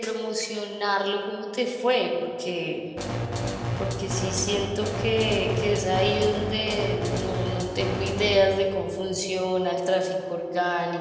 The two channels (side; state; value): both; identical; correlation 1.00